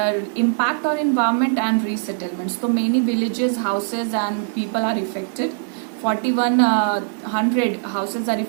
impact on environment and resettlements. तो many villages, houses and people are affected. 4100 houses are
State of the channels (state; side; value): silent; left; digital silence